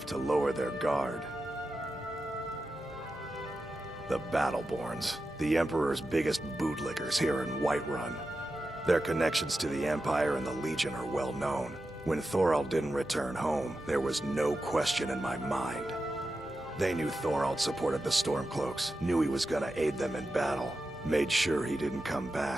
to lower their guard. The Battleborns, the Emperor's biggest bootlickers here in Whiterun. Their connections to the Empire and the Legion are well known. When Thorold didn't return home, there was no question in my mind. They knew Thorold supported the Stormcloaks, knew he was gonna aid them in battle, made sure he didn't come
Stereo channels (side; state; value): both; normal; correlation 0.91